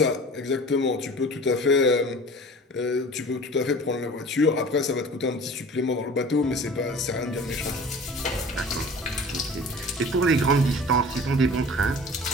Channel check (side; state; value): both; normal; correlation 0.42